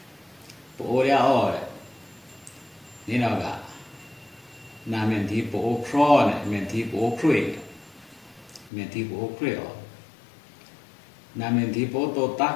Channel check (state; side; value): drops out; right; at 8.7 s